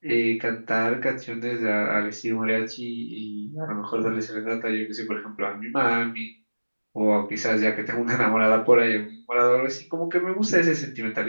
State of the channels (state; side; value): inverted; both; correlation -1.00